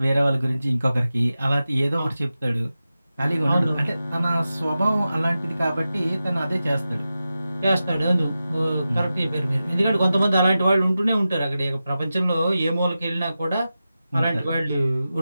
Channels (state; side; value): inverted; both; correlation -0.93